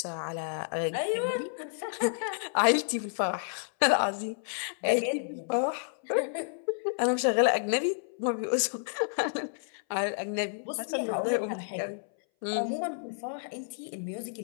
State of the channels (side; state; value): right; silent; 58 dB below the other